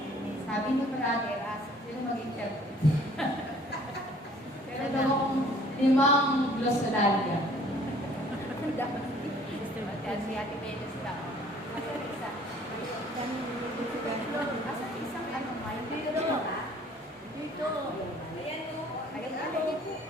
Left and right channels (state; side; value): normal; both; correlation 0.55